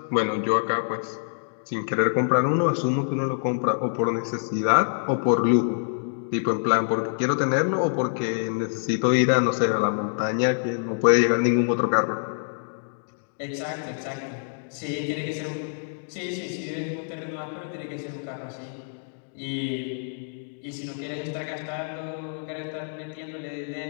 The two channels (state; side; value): silent; right; digital silence